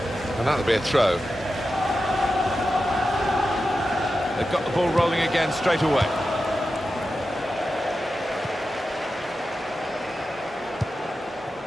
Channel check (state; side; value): normal; both; correlation 0.91